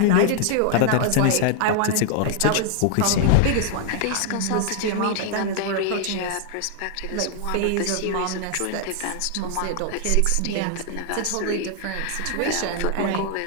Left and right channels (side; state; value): both; different; correlation 0.00